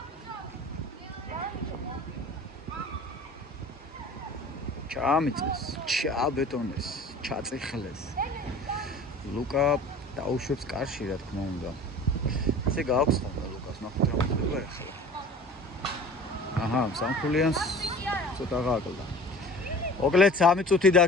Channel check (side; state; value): both; normal; correlation 0.42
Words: ჩამიწეს, ჩაბეტონეს, ჩაწიხლეს. ლუკა დაუშვებს კარში, რა თქმა უნდა. ესე გააქვს ხოლმე ლუკას, ნახოთ რა მოხდება ახლა. აჰა, სამხულიანს ცოტა გააკლდა. მოკლედ 3 წუთი